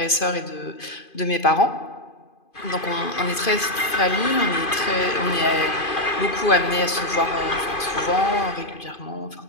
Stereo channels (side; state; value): right; late; 2.5 ms